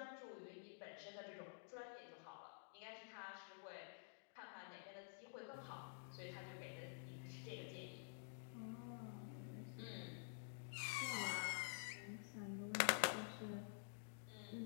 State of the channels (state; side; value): silent; right; digital silence